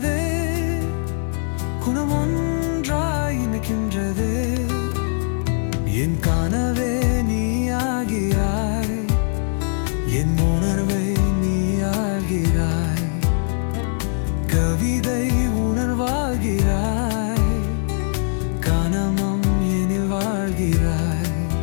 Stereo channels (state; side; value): silent; right; digital silence